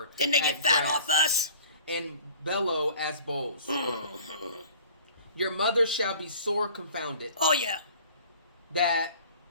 Didn't they get fat off us? And bellow as bulls. Your mother shall be sore confounded. Oh, yeah. That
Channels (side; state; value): both; inverted; correlation -0.49